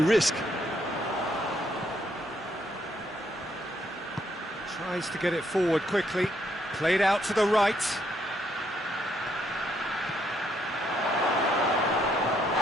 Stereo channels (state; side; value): normal; both; correlation 0.73